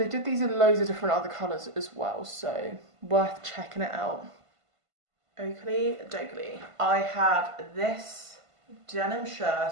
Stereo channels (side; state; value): left; late; 1.5 ms